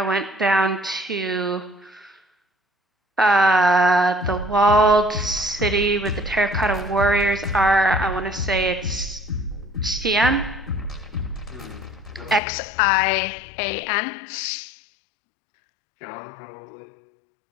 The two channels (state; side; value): drops out; right; at 12.4 s